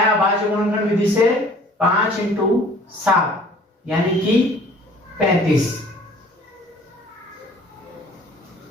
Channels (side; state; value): both; normal; correlation 0.52